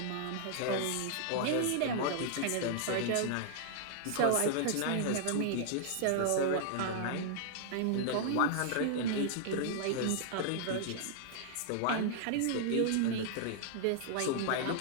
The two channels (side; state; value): both; different; correlation -0.01